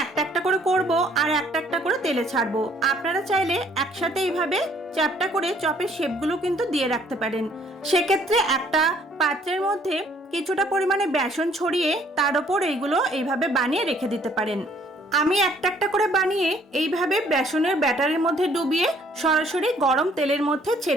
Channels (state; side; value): normal; both; correlation 0.61